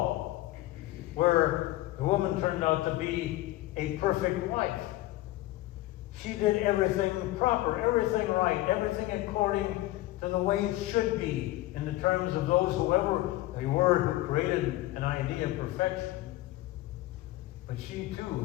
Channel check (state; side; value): quieter; right; 17.0 dB